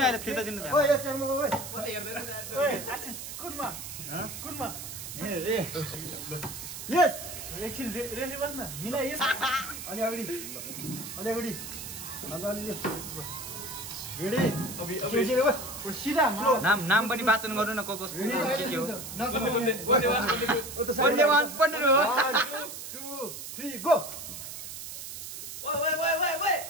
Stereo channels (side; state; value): right; noise; hiss, 9 dB below the sound